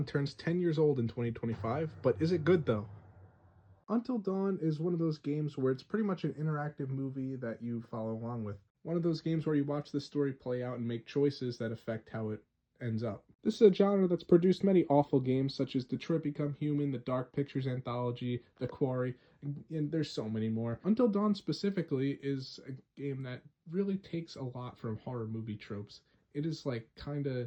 turns 10 years old in 2025, but is it good though? Until Dawn is one of those games where it's pretty much an interactive movie that you follow along with. One of those games where you watch the story play out and make choices that affect how it ends up. This is a genre that's produced many awful games such as Detroit Become Human, the Dark Pictures Anthology, The Quarry, and there's so many more. Until Dawn specifically is a game that really takes a lot from horror movie tropes. It is like kind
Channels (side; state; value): both; identical; correlation 1.00